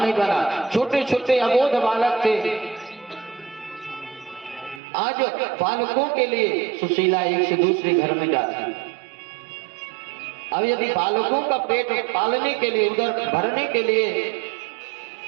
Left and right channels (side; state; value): left; drops out; at 4.8 s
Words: बना, छोटे छोटे अबोध बालक थे। आज बालकों के लिए सुशीला एक से दूसरे घर में जाती। अब यदि बालकों का पेट पालने के लिए, उधर भरने के लिए